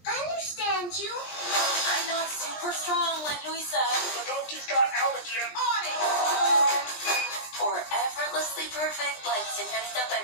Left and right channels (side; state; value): right; late; 20 ms